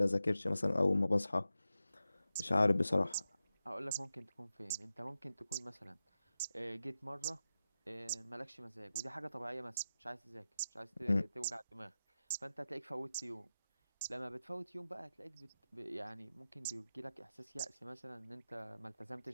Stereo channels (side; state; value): both; inverted; correlation -0.92